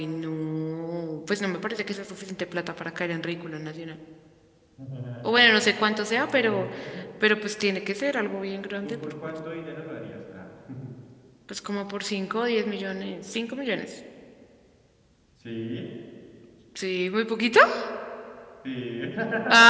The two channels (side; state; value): both; identical; correlation 1.00